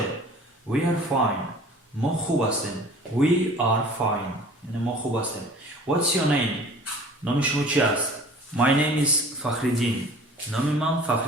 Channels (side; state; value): both; normal; correlation 0.46